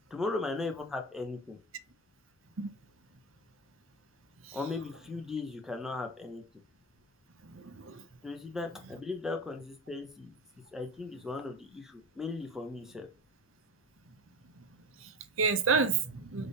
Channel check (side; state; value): both; normal; correlation 0.25